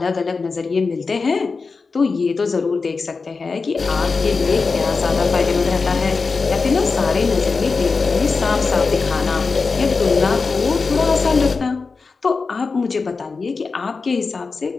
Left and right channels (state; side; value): quieter; right; 4.4 dB